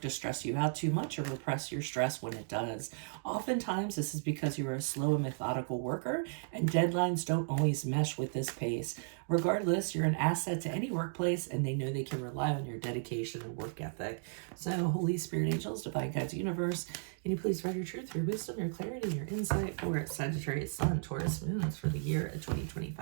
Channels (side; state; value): left; silent; digital silence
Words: to stress you out too much or repress your stress when it does. Oftentimes, this is because you are a slow and methodical worker, and deadlines don't always mesh with this pace. Regardless, you're an asset to any workplace, and they know they can rely on your dedication and work ethic. So, Holy Spirit, angels, divine guides, universe, can you please provide your truth, your wisdom, your clarity, your insight for Sagittarius, Sun, Taurus, Moons for the year of